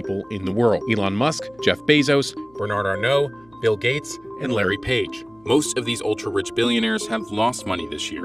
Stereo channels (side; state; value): left; noise; hum, 30 dB below the sound